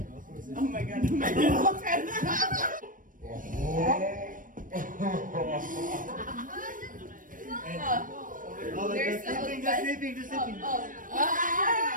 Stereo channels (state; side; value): late; left; 0.39 ms